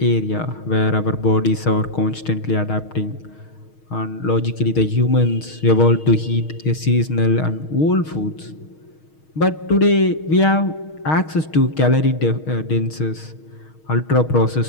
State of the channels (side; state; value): right; late; 6.4 ms